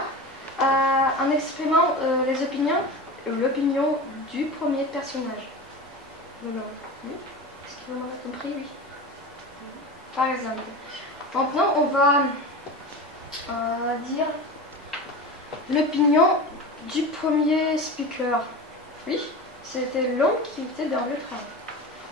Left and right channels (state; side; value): normal; both; correlation 0.29